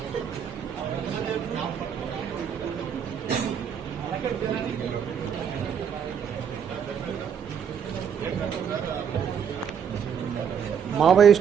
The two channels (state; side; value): quieter; left; 7.7 dB